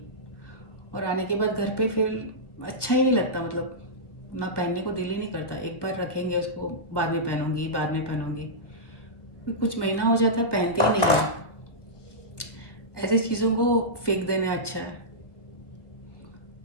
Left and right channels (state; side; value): late; right; 1.3 ms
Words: और आने के बाद घर पे फिर अच्छा ही नहीं लगता, मतलब ना पहनने को दिल ही नहीं करता। एक बार रखेंगे उसको, बाद में पहनूंगी, बाद में पहनूंगी, फिर कुछ महीना हो जाता है पहनती ही नहीं है। ऐसी चीज़ों को फेंक देना अच्छा है।